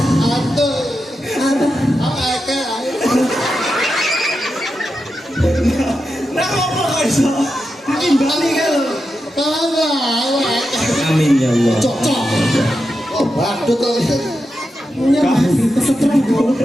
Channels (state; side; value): normal; both; correlation 0.88